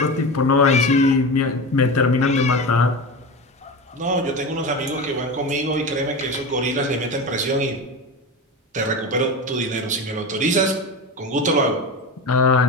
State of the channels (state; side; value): normal; both; correlation 0.24